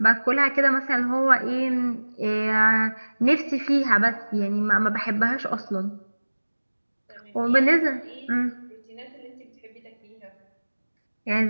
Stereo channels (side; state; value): both; inverted; correlation -1.00